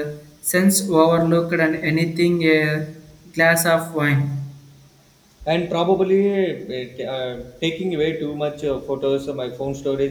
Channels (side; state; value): both; identical; correlation 1.00